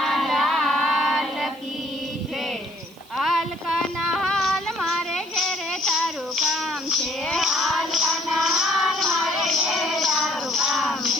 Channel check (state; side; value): noise; right; hiss, 26 dB below the sound